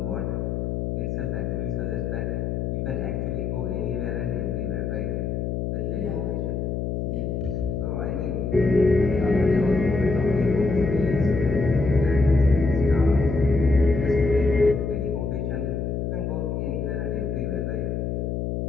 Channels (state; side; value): noise; left; hum, 2 dB below the sound